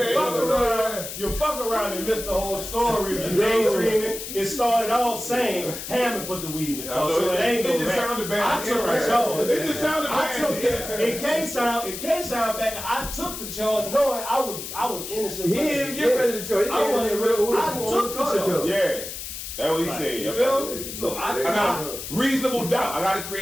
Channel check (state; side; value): noise; left; hiss, 8 dB below the sound